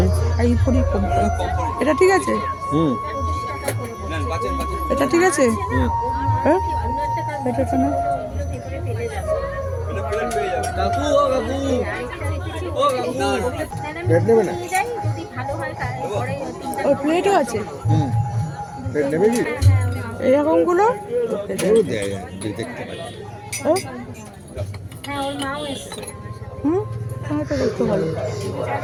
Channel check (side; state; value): both; identical; correlation 1.00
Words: আইভরি কোম্পানি। এটা ঠিক আছে? হুম এটা ঠিক আছে? হুম। হ্যাঁ এটা তো না। কাকু ও কাকু ও কাকু প্লেট নেবে না? যদি ভালো হয় তাহলে ওর প্লেটও আছে হুম। প্লেট নেবে কি? এরকমগুলো। এগুলো দেয় যে দেখতে পাই। হ্যাঁ হ্যাঁ ওর মাও এসছে হুম হ্যাঁ তো দেখতে ভালো।